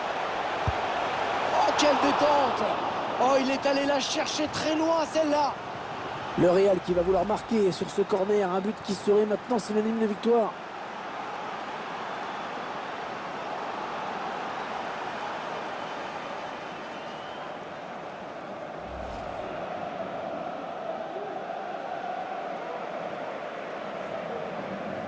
Oh, quelle détente! Oh, il est allé la chercher très loin, celle-là. Le Real qui va vouloir marquer sur ce corner, un but qui serait maintenant synonyme de victoire.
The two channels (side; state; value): both; identical; correlation 1.00